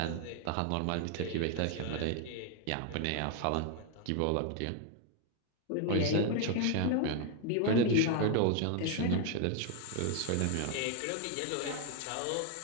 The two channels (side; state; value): both; different; correlation 0.00